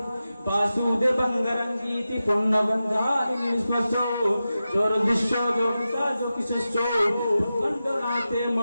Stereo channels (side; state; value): both; inverted; correlation -0.92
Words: বাসুদেবঙ্গরঙ্গীতি পুণ্যগন্ধানি নিস্পর্শো দুর্দৃশ্য যোগিতা যোগিশস্য খণ্ডনাতে